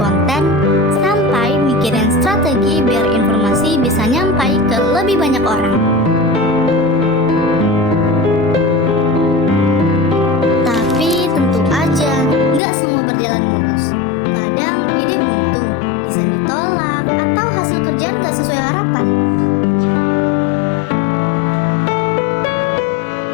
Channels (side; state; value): right; drops out; at 12.6 s